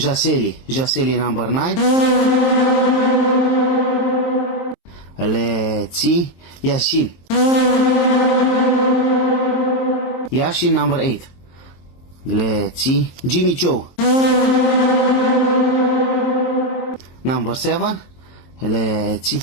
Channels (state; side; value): late; right; 23 ms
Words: Jaseli number 9. Let's see. Yashin. Yashin number 8. Let's see. Jimmy Choo. Number 7. Let's see.